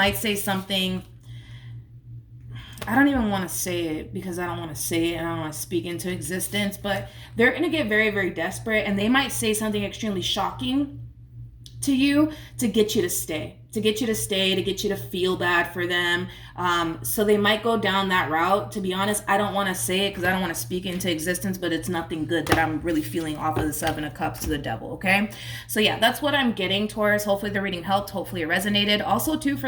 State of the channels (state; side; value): identical; both; correlation 1.00